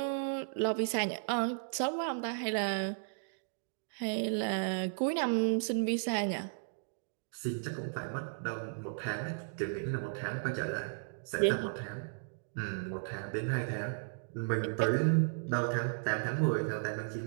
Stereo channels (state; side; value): silent; left; digital silence